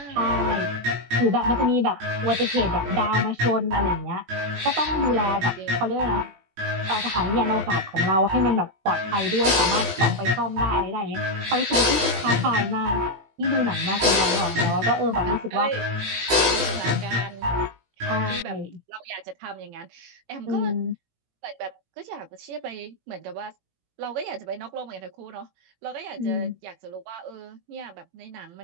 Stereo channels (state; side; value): late; left; 18 ms